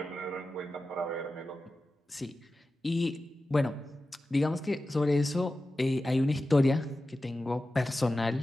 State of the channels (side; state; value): both; normal; correlation 0.93